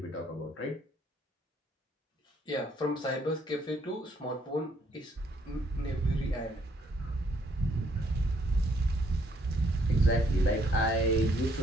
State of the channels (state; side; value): normal; both; correlation 0.68